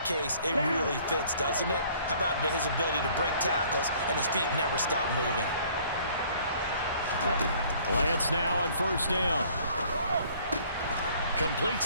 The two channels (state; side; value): inverted; both; correlation -0.57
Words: case, it really fits, doesn't it? How about his ability to break tackles and his feet never stop moving? Lance now on 1st down.